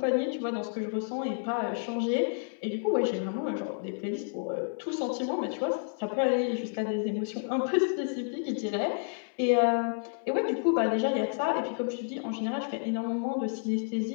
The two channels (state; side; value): silent; right; 58 dB below the other